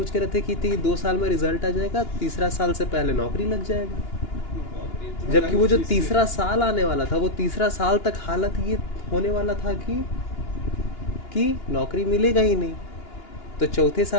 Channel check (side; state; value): right; late; 2.9 ms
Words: के रहते कि 2 साल में रिजल्ट आ जाएगा, तीसरा साल से पहले नौकरी लग जाएगा। जबकि वो जो तीसरा साल आने वाला था, वो तीसरा साल तक हालत ये होने वाला था कि नौकरी मिलेगा ही नहीं। तो चौथे